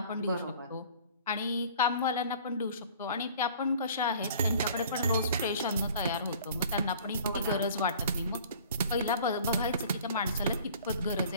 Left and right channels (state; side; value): inverted; both; correlation -0.48